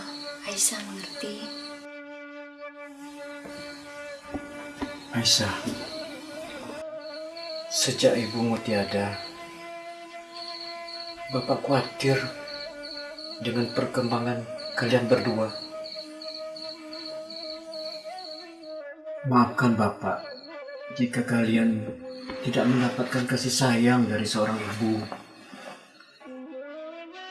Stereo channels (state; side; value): identical; both; correlation 1.00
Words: Aisyah mengerti. Aisyah, sejak ibumu tiada, Bapak khawatir dengan perkembangan kalian berdua. Maafkan Bapak jika kalian tidak mendapatkan kasih sayang dari seorang ibu.